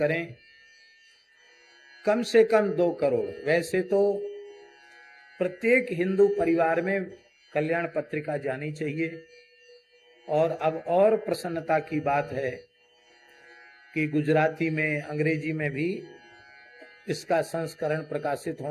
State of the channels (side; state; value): both; identical; correlation 1.00